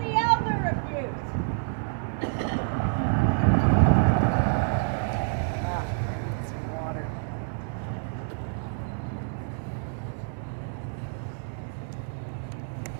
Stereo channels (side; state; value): left; silent; digital silence